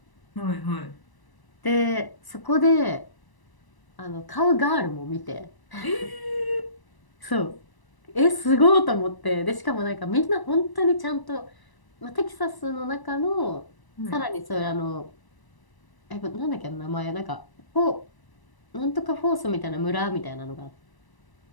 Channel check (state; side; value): late; right; 1.0 ms